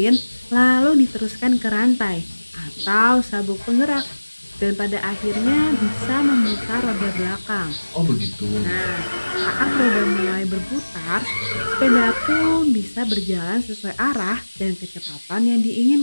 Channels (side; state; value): both; inverted; correlation -1.00